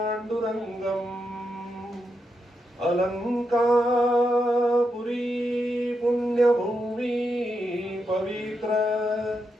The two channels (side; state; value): both; normal; correlation 0.84